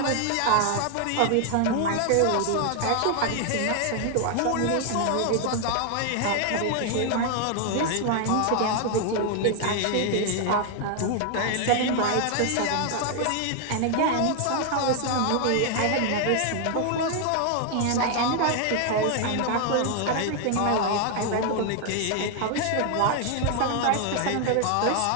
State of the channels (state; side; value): different; both; correlation 0.00